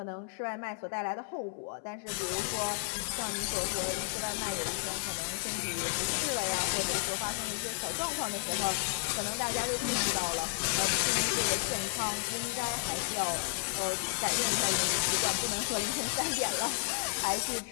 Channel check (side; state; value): right; silent; 56 dB below the other